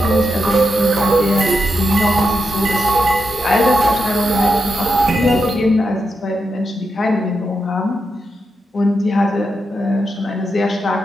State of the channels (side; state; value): both; normal; correlation 0.86